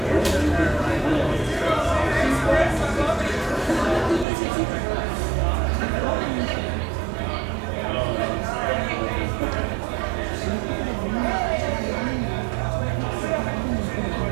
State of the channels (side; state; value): left; drops out; at 4.2 s